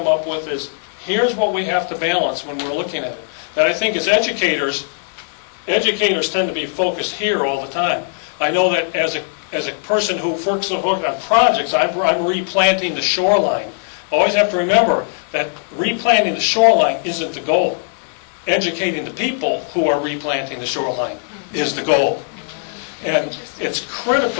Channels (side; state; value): right; silent; digital silence